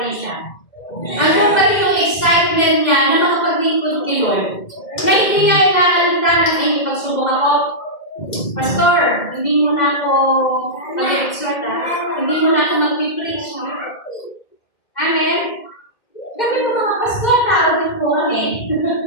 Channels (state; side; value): late; right; 2.1 ms